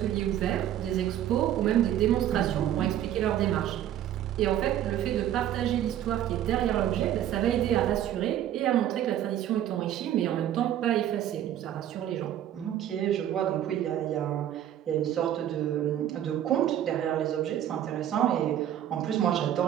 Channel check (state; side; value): quieter; left; 11.3 dB